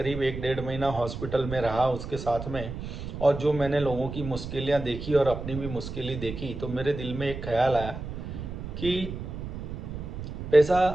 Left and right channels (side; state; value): right; noise; rumble, 8 dB below the sound